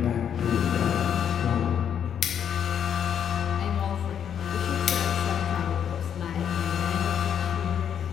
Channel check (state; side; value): quieter; right; 8.6 dB